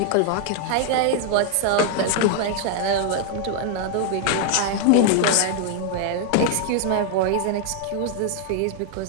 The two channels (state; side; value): different; both; correlation 0.00